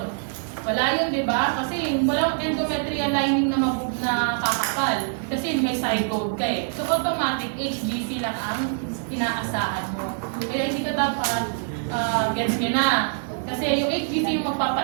Wala yun, di ba? Kasi walang endometrial lining na kakapal. Kasi may zygote ka eh. So automatic, HGC lang ang inaasahan mo. Kaya hindi ka dapat gets nyo na. Kasi yung HGC yung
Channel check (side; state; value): left; silent; 62 dB below the other